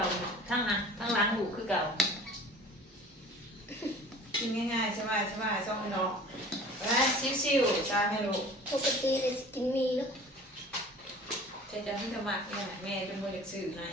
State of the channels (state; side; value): normal; both; correlation 0.44